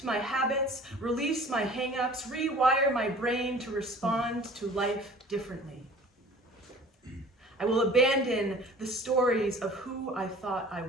my habits, release my hang-ups, rewire my brain to respond to life differently. I will abandon the stories of who I thought I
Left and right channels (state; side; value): normal; both; correlation 0.46